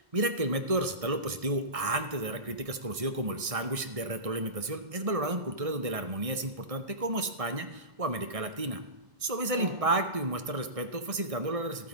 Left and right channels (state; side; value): late; left; 1.6 ms